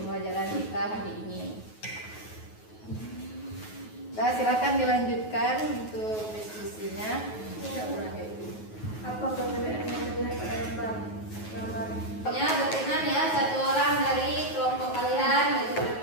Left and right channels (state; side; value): late; right; 9.3 ms